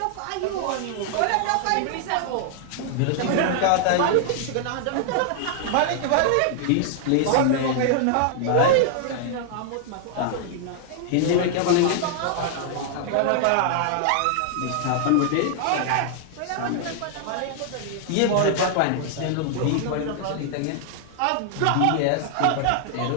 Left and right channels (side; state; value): both; different; correlation -0.01